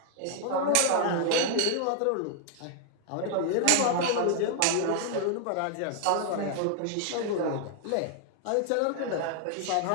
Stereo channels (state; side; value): different; both; correlation 0.00